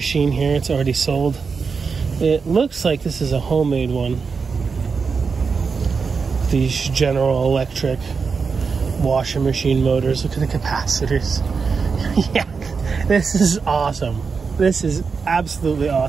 here. It's already sold. It looks like this is a homemade one. These General Electric washing machine motors. Look at the capacitors. Yeah, this is awesome. This is absolutely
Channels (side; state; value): left; quieter; 5.2 dB